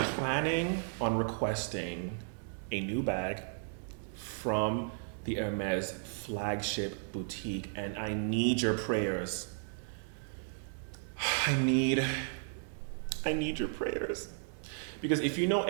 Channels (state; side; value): silent; left; digital silence